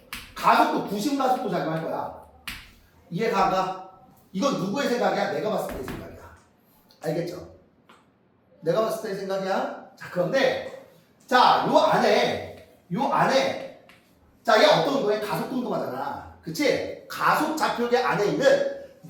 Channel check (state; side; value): identical; both; correlation 1.00